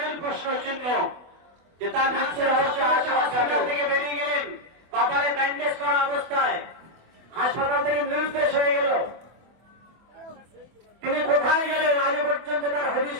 প্রশ্ন চিহ্ন, যে তার মৃত্যুর রহস্য হাসপাতাল থেকে বেরিয়ে গেলেন কপালে ব্যান্ডেজ করা অবস্থায়, হাসপাতাল থেকে নির্দেশ হয়ে গেল, তিনি কোথায় গেলেন আজও পর্যন্ত তার হদিশ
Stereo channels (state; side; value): late; left; 24 ms